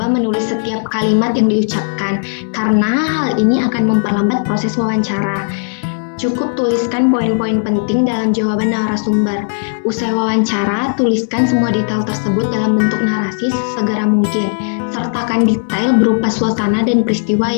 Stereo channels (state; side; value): silent; right; 69 dB below the other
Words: menulis setiap kalimat yang diucapkan karena hal ini akan memperlambat proses wawancara. Cukup tuliskan poin-poin penting dalam jawaban narasumber. Usai wawancara, tuliskan semua detail tersebut dalam bentuk narasi sesegera mungkin. Sertakan detail berupa suasana dan peristiwa